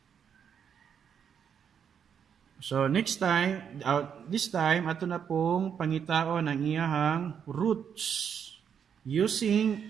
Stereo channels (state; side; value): quieter; left; 7.8 dB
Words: So, next time, this time, ato na pong pangitaon ang iyahang roots